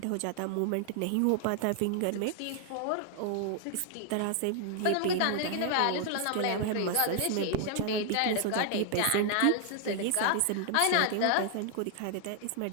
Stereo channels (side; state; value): both; different; correlation 0.00